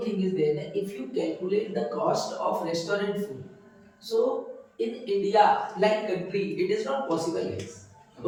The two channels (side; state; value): both; identical; correlation 1.00